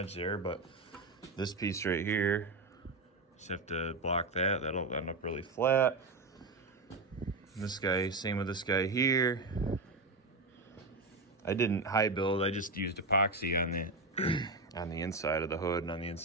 there. But this piece right here, just have to block that. That'll end up really flat. This guy, same with this guy here. I didn't high build. I just used epoxy on the on the inside of the hood and on the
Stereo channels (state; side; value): quieter; left; 3.2 dB